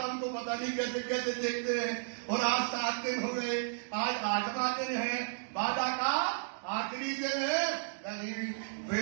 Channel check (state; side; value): silent; left; digital silence